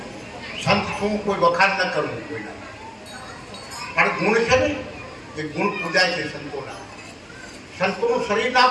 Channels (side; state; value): both; identical; correlation 1.00